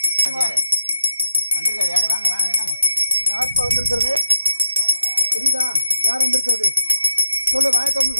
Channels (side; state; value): both; inverted; correlation -0.81